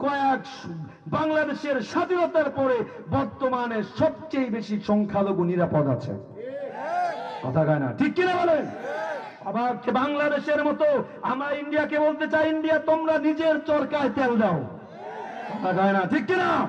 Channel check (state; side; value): identical; both; correlation 1.00